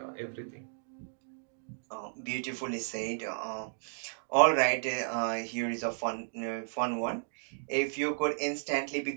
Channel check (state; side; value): silent; left; digital silence